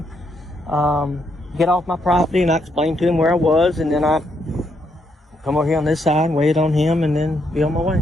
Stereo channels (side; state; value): both; normal; correlation 0.76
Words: Get off my property. And I explained to him where I was. And then I come over here on this side and wait on him and then be on my way.